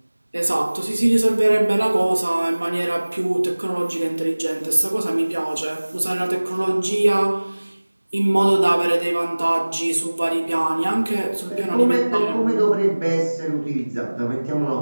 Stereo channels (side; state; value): both; inverted; correlation -1.00